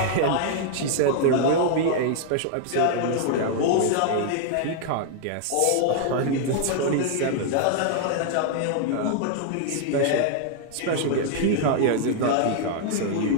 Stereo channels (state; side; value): different; both; correlation -0.01